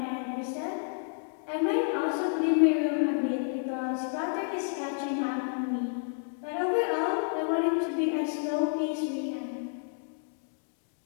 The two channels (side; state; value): right; silent; digital silence